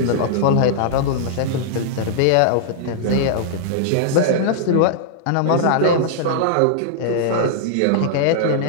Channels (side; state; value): both; different; correlation -0.01